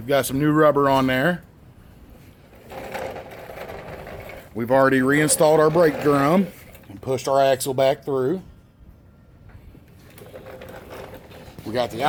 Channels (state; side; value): identical; both; correlation 1.00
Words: got some new rubber on there. We've already reinstalled our brake drum and pushed our axle back through. We got the